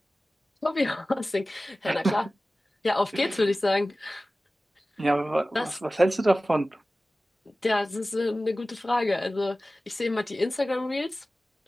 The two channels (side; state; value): both; normal; correlation 0.96